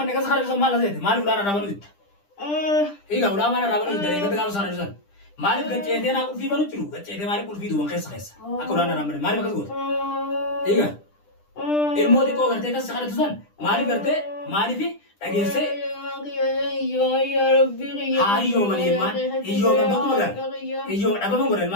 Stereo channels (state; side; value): late; right; 10 ms